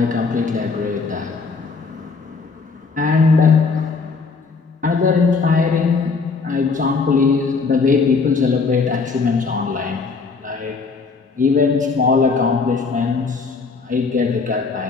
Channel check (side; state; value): right; quieter; 4.6 dB